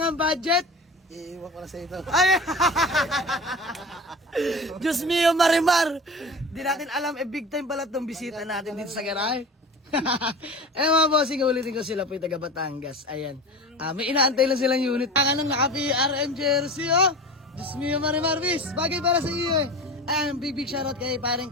budget, Iiwan ko na sa ito. ay! Diyos mio, Marimar! Di natin alam, big time pala itong bisita natin dito sa garahe. Eh mga bossing, ulitin ko sila po yung taga Batangas. Ayan. May inaantay lang silang unit. Ang naka-PRM jersey, oh! Diyos mio, Marimar, bis! Bagay para sa iyo, eh. Ayan, big shoutout kay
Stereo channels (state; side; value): normal; both; correlation 0.33